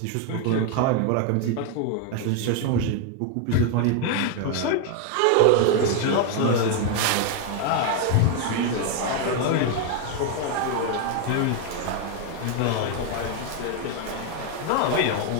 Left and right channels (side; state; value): both; different; correlation 0.01